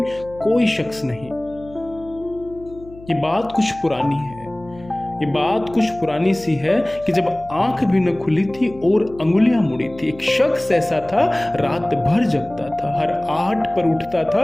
कोई शख्स नहीं। ये बात कुछ पुरानी है। ये बात कुछ पुरानी सी है कि जब आंख भी न खुली थी और अंगुलियां मुड़ी थी, एक शख्स ऐसा था रात भर जगता था, हर आहट पर उठता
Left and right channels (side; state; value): left; noise; hum, 20 dB below the sound